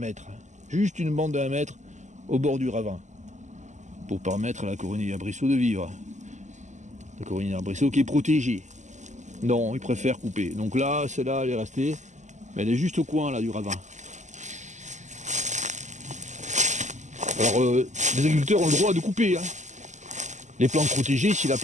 juste une bande de 1 mètre au bord du ravin, pour permettre à la coronille arbrisseau de vivre? La coronille arbrisseau qui est protégée. Non, il préfère couper. Donc là, celle-là, elle est restée, mais elle est juste au coin là du ravin. Alors, les agriculteurs ont le droit de couper les plantes protégées si la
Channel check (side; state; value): left; late; 0.34 ms